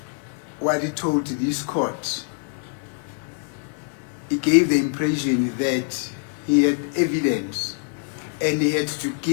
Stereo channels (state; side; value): quieter; right; 38.5 dB